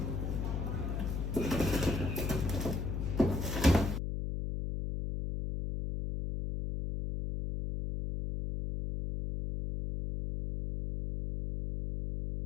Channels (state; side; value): noise; left; hum, 2 dB below the sound